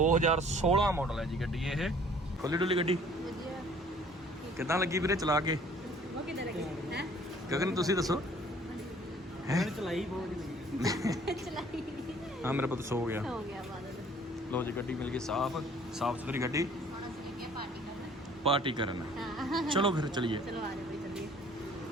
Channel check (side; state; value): both; normal; correlation 0.55